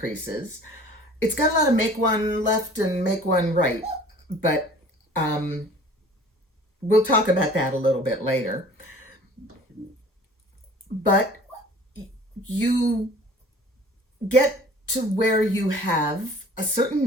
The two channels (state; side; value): normal; both; correlation 0.47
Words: It's got a lot of make one left and make one right, but we'll talk about that a little bit later. but you get to where you have a certain